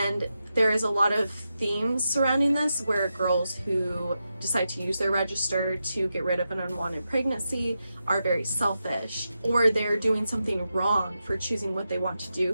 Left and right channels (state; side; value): inverted; both; correlation -0.88